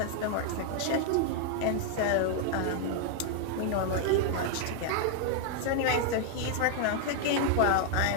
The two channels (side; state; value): both; different; correlation 0.00